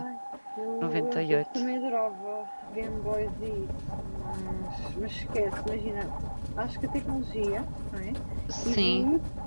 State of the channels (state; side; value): inverted; both; correlation -1.00